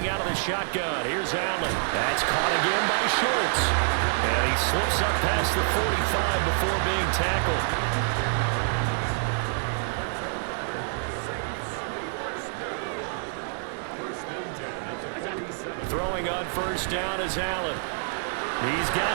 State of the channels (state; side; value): silent; left; 60 dB below the other